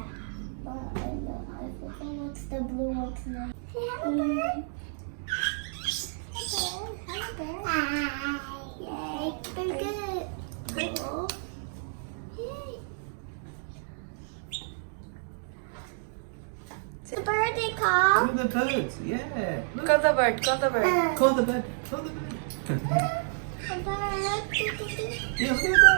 But I forgot what's the blue one's name. Hey, hello, bird. Hello, bird. Hi. Yay. Very good. Cool. Yay. The bird they call. Call the birds, yeah. Look. Call the bird, call the bird. Call the bird, call the bird. The bird. Yeah, look at the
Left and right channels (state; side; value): silent; left; digital silence